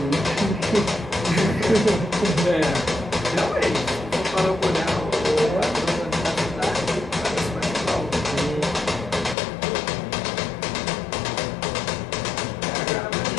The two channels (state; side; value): drops out; right; at 9.3 s